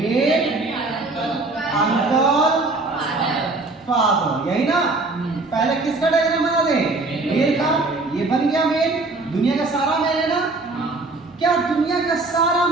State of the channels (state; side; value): quieter; left; 3.3 dB